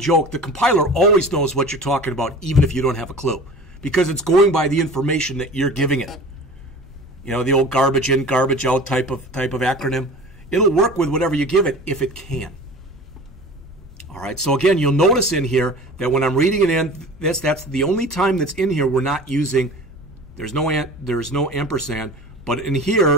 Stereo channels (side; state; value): both; normal; correlation 0.39